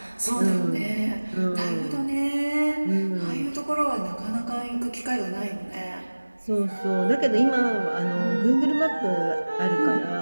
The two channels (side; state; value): both; inverted; correlation -1.00